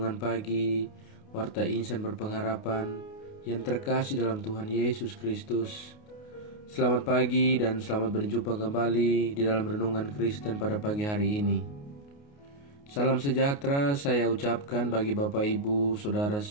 Pagi, Warta Insan Berpengharapan yang terkasih dalam Tuhan Yesus Kristus. Selamat pagi dan selamat berjumpa kembali di dalam Renungan Kristen pada pagi hari ini. Salam sejahtera saya ucapkan bagi Bapak Ibu, Saudara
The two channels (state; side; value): late; right; 29 ms